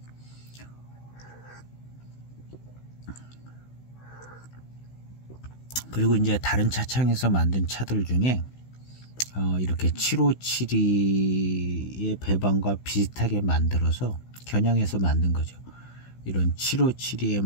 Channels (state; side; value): late; right; 16 ms